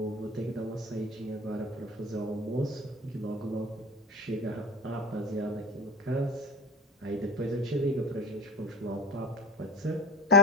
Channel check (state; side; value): normal; both; correlation 0.31